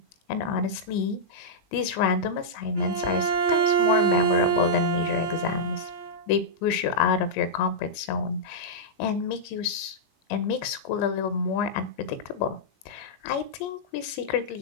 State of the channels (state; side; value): late; right; 20 ms